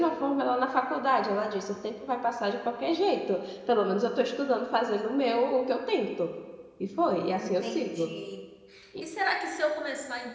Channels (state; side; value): identical; both; correlation 1.00